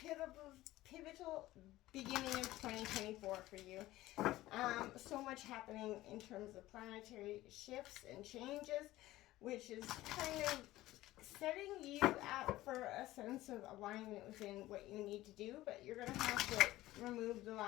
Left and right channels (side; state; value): right; quieter; 16.5 dB